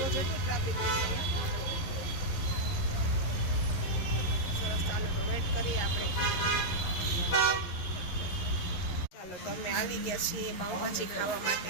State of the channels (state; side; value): late; right; 11 ms